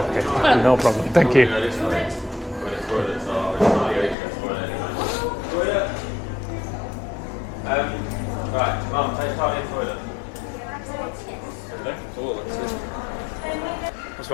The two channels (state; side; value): drops out; right; at 4.2 s